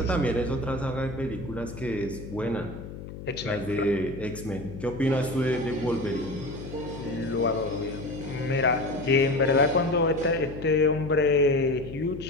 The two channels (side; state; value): left; noise; hum, 11 dB below the sound